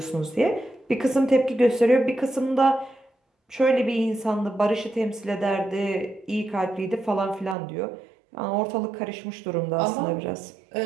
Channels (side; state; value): left; drops out; at 7.6 s